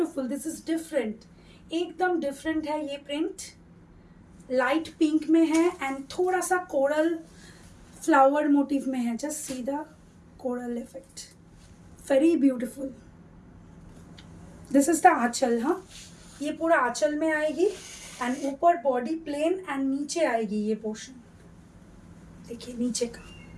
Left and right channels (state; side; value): identical; both; correlation 1.00